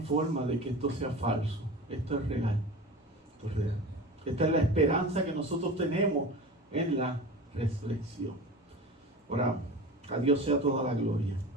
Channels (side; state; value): both; normal; correlation 0.33